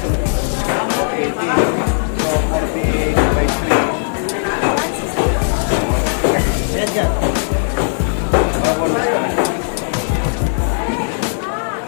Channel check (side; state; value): right; silent; 61 dB below the other